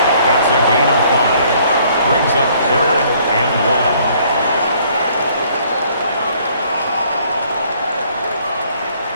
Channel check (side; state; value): both; inverted; correlation -0.62